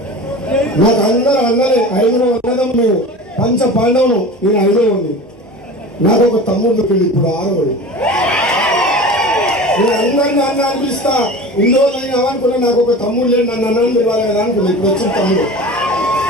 నాకు అందరూ అన్నలే, 5 అన్నదం మేము, పంచ పాండవులు, నేను 5 ఉంది. నాకు ఒక తమ్ముడు పెళ్ళి, ఇప్పుడు 6. నేను అందరినీ అన్న అనిపిస్తా, ఇన్ని రోజులు అయినా అనుకున్నా నాకు ఒక తమ్ముడు లేడు, నన్ను అన్నాను పిలవాలి కదా అనుకున్నా. ఇప్పుడు వచ్చిన తమ్ముడు,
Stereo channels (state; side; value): normal; both; correlation 0.35